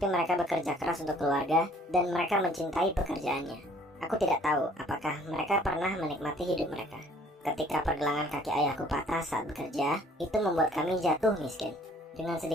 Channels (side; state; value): both; normal; correlation 0.57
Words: mereka bekerja keras untuk keluarga dan mereka mencintai pekerjaannya. Aku tidak tahu apakah mereka pernah menikmati hidup mereka. Ketika pergelangan kaki ayahku patah saat bekerja, itu membuat kami jatuh miskin. Dengan